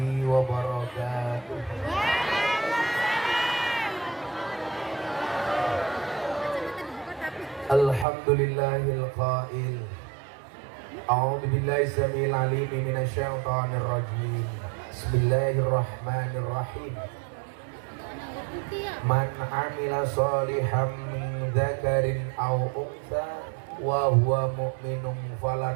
wabarakatuh. Alhamdulillahil qail. A'udzu billahi samil alim minasyaitonir rajim. Bismillahirrahmanirrahim. Man amila shalihan min dzakarin aw untha wa huwa mu'minun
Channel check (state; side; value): drops out; left; at 8.1 s